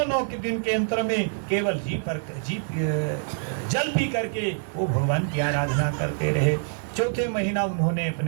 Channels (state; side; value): silent; left; digital silence